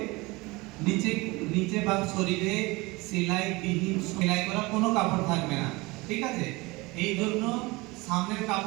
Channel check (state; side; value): quieter; left; 23.4 dB